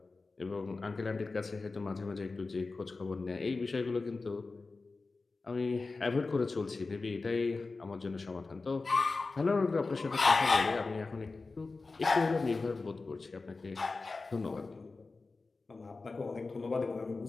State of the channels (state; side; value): quieter; right; 3.8 dB